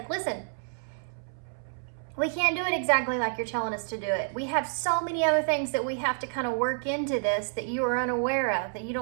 listen, we can't do it exactly like you're telling us to do it. We have so many other things that we have to kind of work into this that you are unaware of, that you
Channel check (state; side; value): silent; left; 59 dB below the other